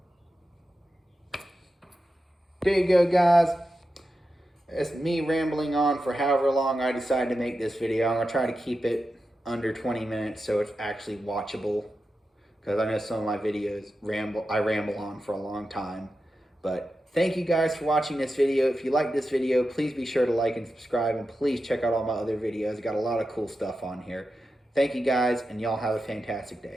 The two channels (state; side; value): normal; both; correlation 0.90